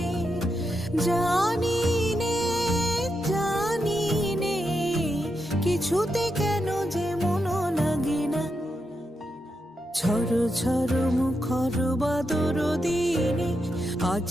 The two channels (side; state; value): both; normal; correlation 0.85